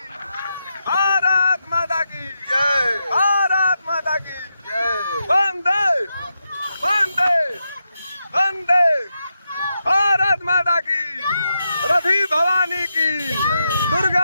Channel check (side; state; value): both; inverted; correlation -0.86